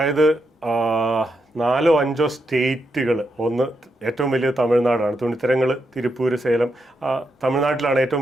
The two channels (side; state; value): both; normal; correlation 0.83